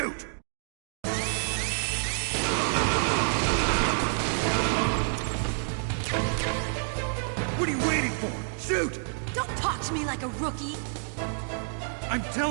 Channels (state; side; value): silent; left; 59 dB below the other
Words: What are you waiting for? Shoot! Don't talk to me like a rookie! I'm